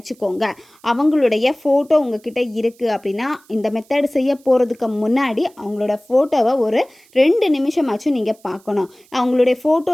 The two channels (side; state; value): right; noise; hiss, 30 dB below the sound